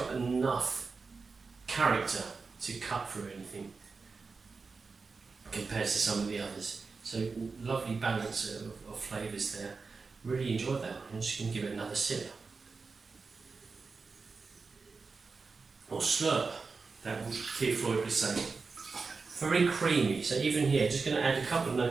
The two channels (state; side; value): quieter; left; 4.5 dB